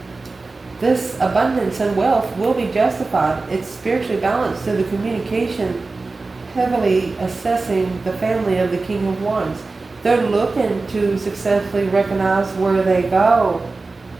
this abundance and wealth will be justified. It's spiritually balanced through the communication, heavily assessing the family of the King of Wands. They're looking to successfully recognize where they go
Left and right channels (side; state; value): left; quieter; 3.7 dB